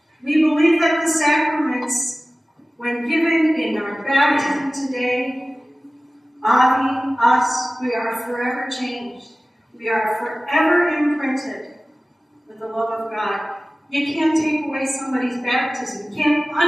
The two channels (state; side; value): normal; both; correlation 0.97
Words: We believe that the sacraments, when given in our baptism today, Avi, us, we are forever changed. We are forever imprinted with the love of God. You can't take away somebody's baptism. You can't